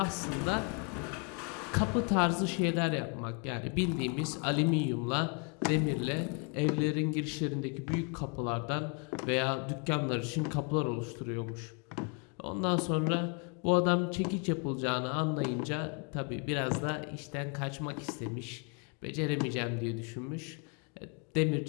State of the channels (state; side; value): quieter; right; 37.0 dB